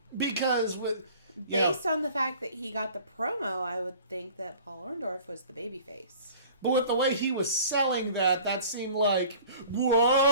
Because with... Based on the fact that he got the promo, I would think that Paul Orndorff was the babyface. But with the way he was selling that seemed like,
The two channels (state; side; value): inverted; both; correlation -0.47